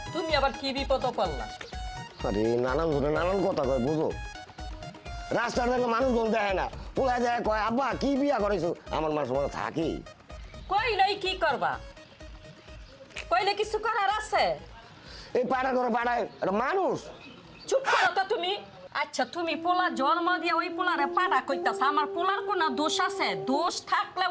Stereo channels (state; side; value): identical; both; correlation 1.00